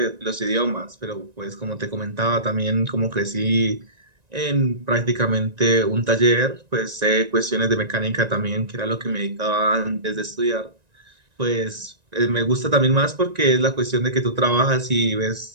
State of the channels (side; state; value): left; late; 1.9 ms